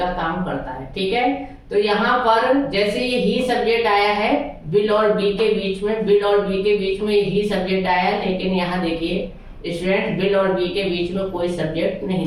काम करता है, ठीक है। तो यहाँ पर जैसे ये ही सब्जेक्ट आया है विल और बी के बीच में, विल और बी के बीच में ही सब्जेक्ट आया है, लेकिन यहाँ देखिए स्टूडेंट विल और बी के बीच में कोई सब्जेक्ट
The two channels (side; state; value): both; identical; correlation 1.00